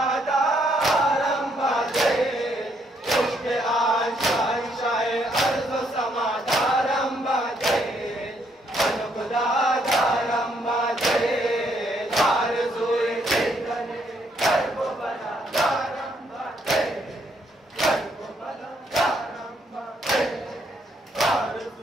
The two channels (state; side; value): normal; both; correlation 0.72